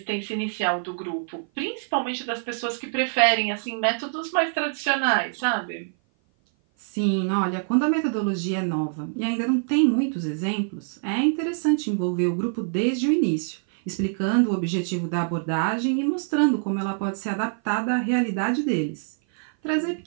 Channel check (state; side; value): silent; left; 56 dB below the other